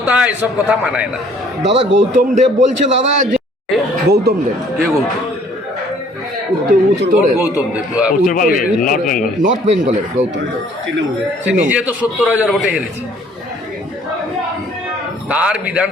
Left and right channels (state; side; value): normal; both; correlation 0.58